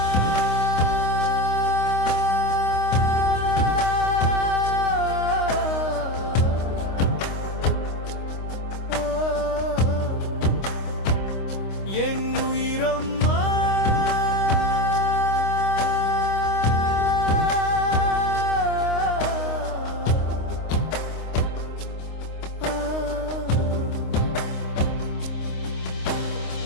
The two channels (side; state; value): right; late; 26 ms